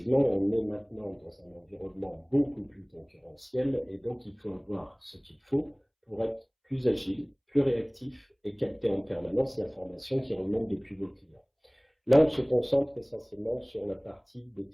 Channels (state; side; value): identical; both; correlation 1.00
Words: on est maintenant dans un environnement beaucoup plus concurrentiel et donc il faut avoir ce qu'il faut pour être plus agile, plus réactif et capter en permanence l'information qui remonte depuis vos clients. Là, on se concentre essentiellement sur la partie des